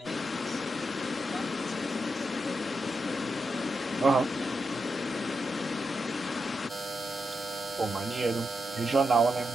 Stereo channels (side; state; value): both; normal; correlation 0.85